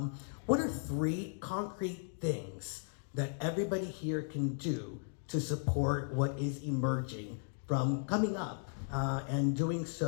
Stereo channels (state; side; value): silent; right; digital silence